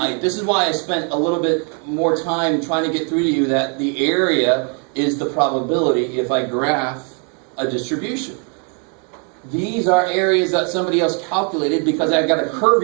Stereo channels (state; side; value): quieter; left; 39.2 dB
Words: this is why I spent a little bit more time trying to get through to you that the area is the probability if I graph a distribution. These are areas that somebody else calculated because I've got a